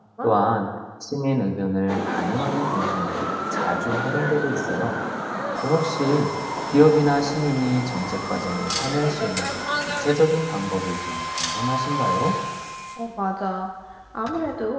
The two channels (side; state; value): both; identical; correlation 1.00